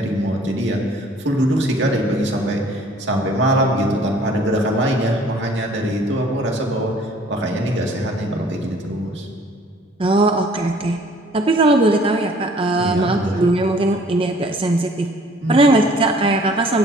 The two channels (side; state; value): both; normal; correlation 0.55